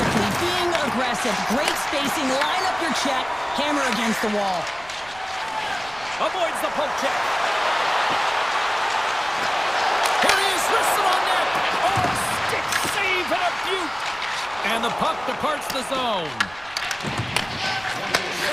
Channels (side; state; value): right; noise; rumble, 22 dB below the sound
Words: being aggressive, great spacing, line up your check, hammer against the wall. Avoids the poke check. Here he is, wristed on net. Oh, stick save and a beaut. And the puck departs the zone.